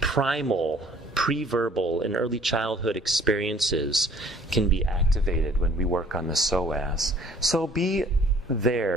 pre-verbal, and early childhood experiences can be activated when we work on the psoas. So be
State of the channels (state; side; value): normal; both; correlation 0.55